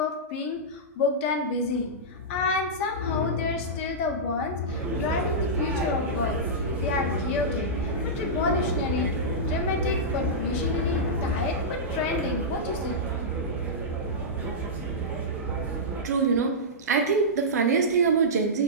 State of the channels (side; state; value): both; normal; correlation -0.13